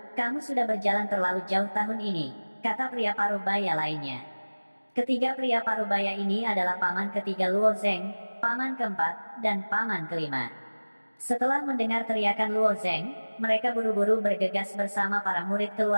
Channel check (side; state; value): both; inverted; correlation -1.00